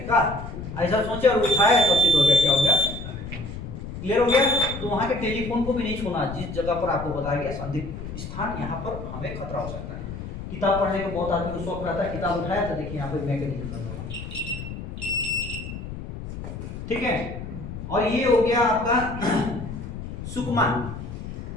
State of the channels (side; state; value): left; noise; rumble, 9 dB below the sound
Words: का, ऐसा सोचे और उठाया तो सिद्ध हो गया, क्या हो गया, क्लियर हो गया। तो वहां के टेलीफोन को भी नहीं छूना, जिस जगह पर आपको बताया गया संदिग्ध स्थान, यहाँ पर हमें खतरा हो सकता है। किताब पढ़ने का बहुत आदमी को शौक रहता है, किताब उठाया तो देखिए यहाँ पे मैकेनिज्म लगा हुआ, ठीक है। और ये हो गया आपका सुकमा।